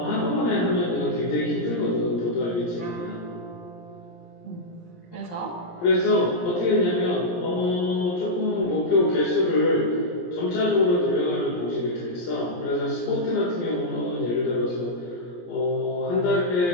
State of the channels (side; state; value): right; late; 17 ms